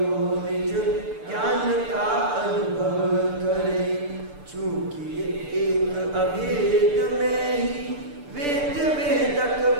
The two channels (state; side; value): late; left; 6.8 ms